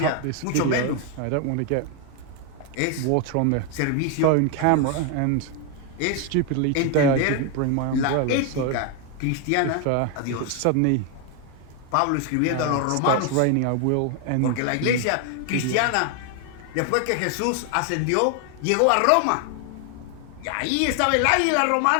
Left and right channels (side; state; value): both; different; correlation 0.01